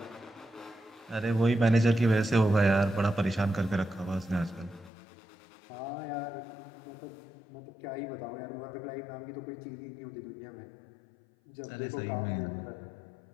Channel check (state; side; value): drops out; right; at 4.9 s